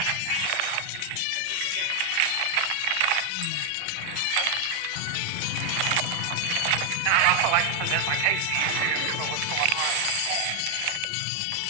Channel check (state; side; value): different; both; correlation 0.00